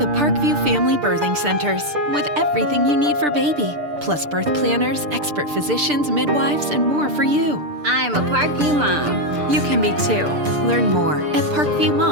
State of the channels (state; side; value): late; left; 6.8 ms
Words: Parkview Family Birthing Centers, with everything you need for baby, plus birth planners, expert physicians, midwives, and more for you. I'm a Parkview mom. You can be too. Learn more at